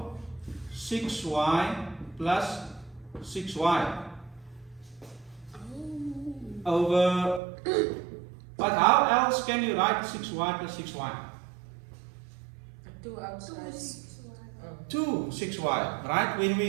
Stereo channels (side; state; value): left; drops out; at 7.4 s